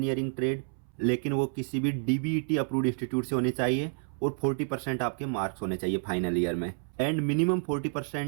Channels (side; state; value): left; silent; 58 dB below the other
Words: ट्रेड, लेकिन वो किसी भी DBET अप्रूव्ड इंस्टीट्यूट से होने चाहिए। और 40% आपके मार्क्स होने चाहिए फाइनल ईयर में। And minimum